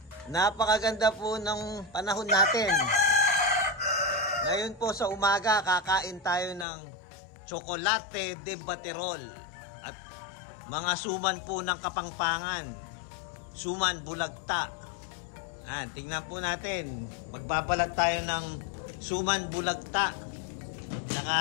Napakaganda po ng panahon natin. Ngayon po sa umaga, kakain tayo ng Chocolate de Baterol at mga suman po ng Kapampangan. Suman bulagta. Tingnan po natin. Magbabalag tayo ng suman bulagta.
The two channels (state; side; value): drops out; right; at 6.7 s